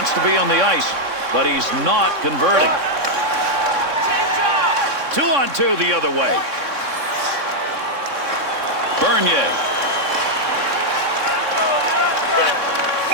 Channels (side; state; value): left; late; 3.6 ms